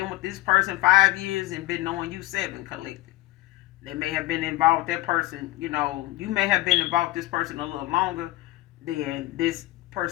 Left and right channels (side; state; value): right; quieter; 18.2 dB